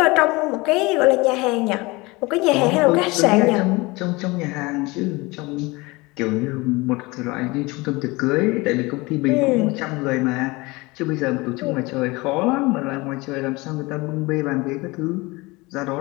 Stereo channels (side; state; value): right; quieter; 23.5 dB